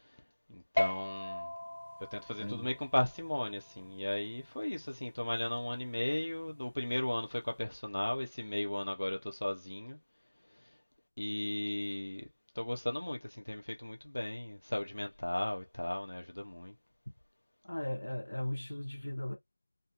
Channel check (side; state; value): both; inverted; correlation -1.00